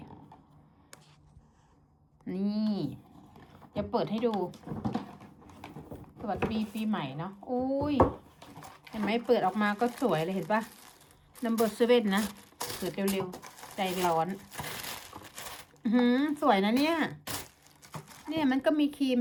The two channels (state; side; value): identical; both; correlation 1.00